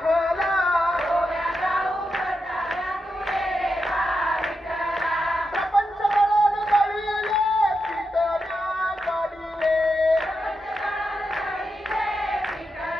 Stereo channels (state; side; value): normal; both; correlation 0.86